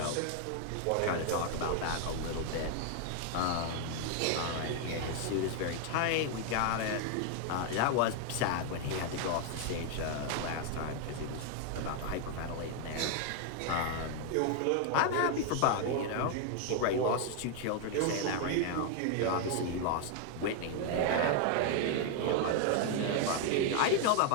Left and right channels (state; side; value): different; both; correlation 0.00